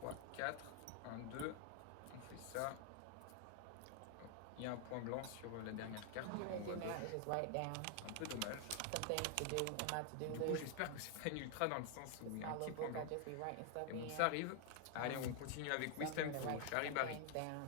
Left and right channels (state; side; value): different; both; correlation 0.00